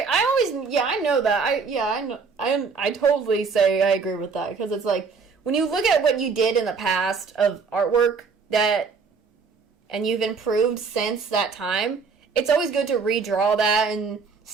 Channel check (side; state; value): left; quieter; 5.1 dB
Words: I know that. I totally say I agree with that, because it's like, when you look at what you did in the past of artwork and you've improved since that time, it's always good to redraw that and